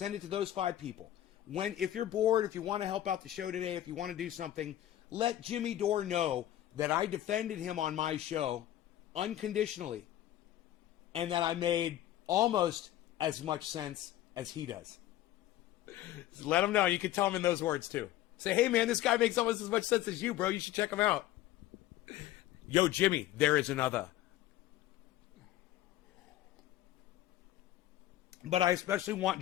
it to those 5 people. If you're bored, if you want to help out the show today, if you want to do something, let Jimmy Dore know that I defended him on my show unconditionally, and that I made almost as much sense as he does. Just let him know. You can tell him in those words too. Say, hey man, this guy makes almost as much sense as you, bro. You should check him out. Yo, Jimmy, there is another. But I especially want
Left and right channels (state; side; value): quieter; right; 13.6 dB